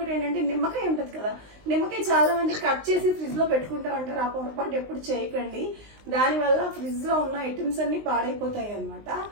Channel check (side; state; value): left; late; 19 ms